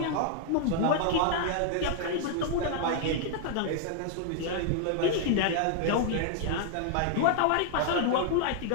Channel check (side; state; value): both; different; correlation 0.00